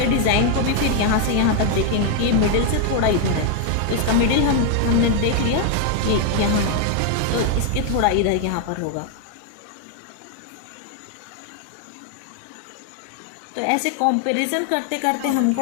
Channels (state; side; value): different; both; correlation 0.00